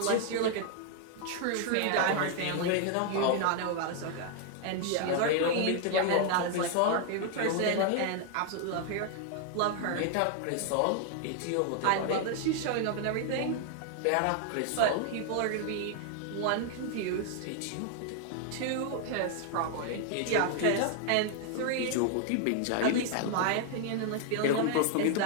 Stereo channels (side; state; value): both; different; correlation 0.00